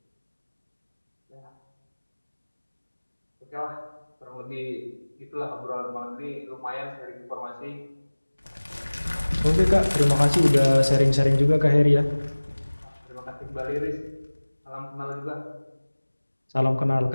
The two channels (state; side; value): inverted; both; correlation -1.00